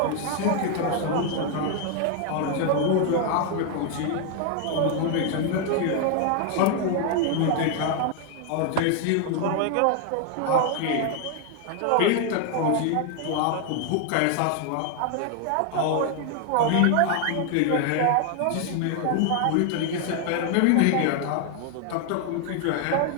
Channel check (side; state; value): both; different; correlation 0.00